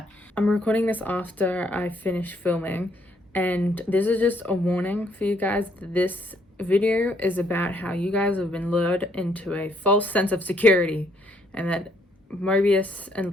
I'm recording this after I finished filming, and this is just a warning for you guys that this video is about how you guys have been lured into a false sense of security and that Mobius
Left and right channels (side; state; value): both; normal; correlation 0.69